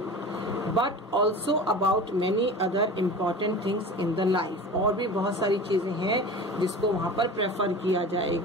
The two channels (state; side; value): normal; both; correlation 0.35